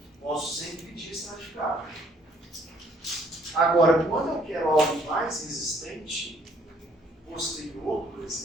Posso sempre pedir estratificado. Agora, quando eu quero algo mais resistente, posterior, por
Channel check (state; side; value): normal; both; correlation 0.63